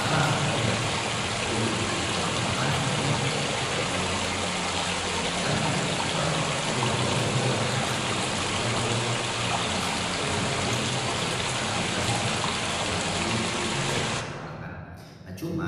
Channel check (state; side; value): identical; both; correlation 1.00